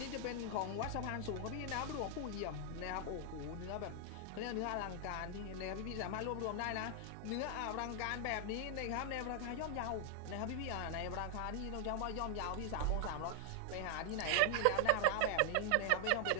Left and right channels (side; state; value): both; different; correlation -0.01